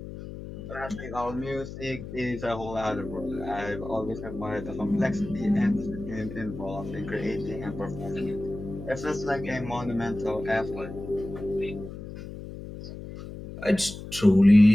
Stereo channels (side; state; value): left; noise; hum, 11 dB below the sound